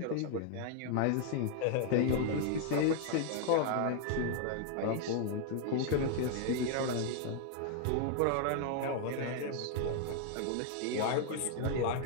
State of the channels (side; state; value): both; different; correlation 0.00